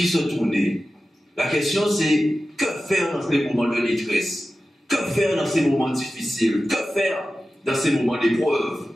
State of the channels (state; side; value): normal; both; correlation 0.94